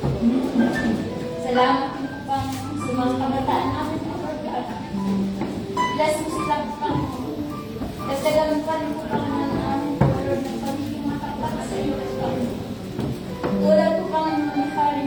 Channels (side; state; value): both; identical; correlation 1.00